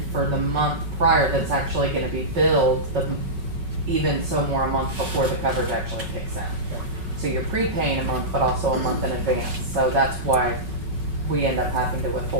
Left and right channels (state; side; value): late; left; 5.4 ms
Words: for the month prior that's actually gonna be billed, even so more a month before the coverage actually kicks in. So you're prepaying a month, but also a month in advance, so that's why we end up having to